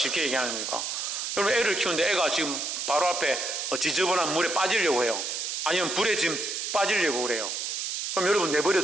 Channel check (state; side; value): noise; right; hiss, 3 dB below the sound